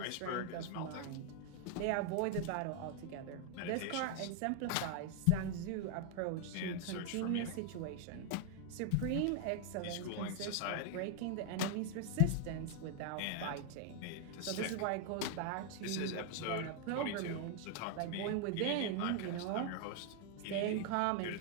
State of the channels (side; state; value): both; different; correlation 0.00